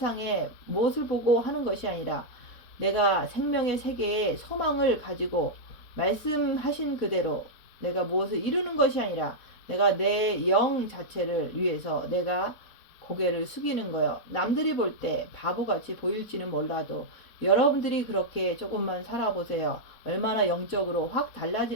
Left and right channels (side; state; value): right; late; 4.1 ms